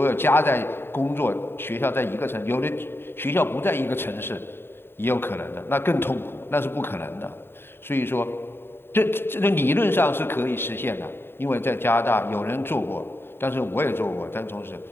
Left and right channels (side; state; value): right; late; 0.11 ms